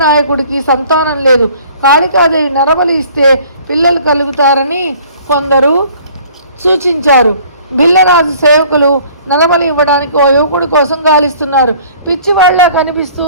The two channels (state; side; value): inverted; both; correlation -0.53